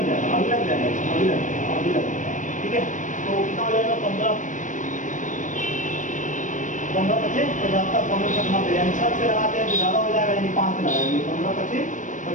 जाएगा, अभिलग जाएगा, अभिलग। ठीक है, तो कितना हो जाएगा 15 25 75 15 से 90 यानी 6 से लगाते हैं तो ज़्यादा हो जाएगा, यानी 5 से लगाएंगे 15 25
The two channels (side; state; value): right; late; 0.37 ms